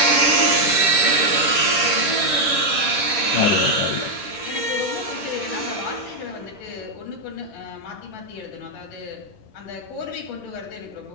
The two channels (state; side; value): late; right; 10 ms